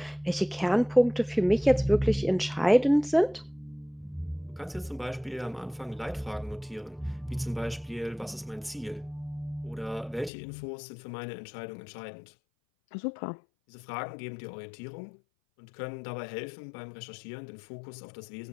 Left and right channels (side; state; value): right; drops out; at 10.3 s